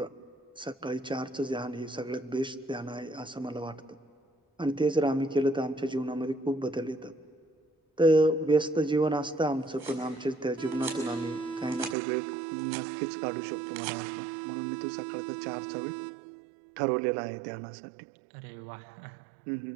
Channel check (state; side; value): drops out; left; at 12.0 s